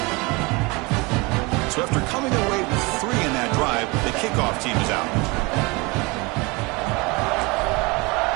So after coming away with 3 in that drive, the kickoff team is out.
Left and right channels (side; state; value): left; quieter; 26.0 dB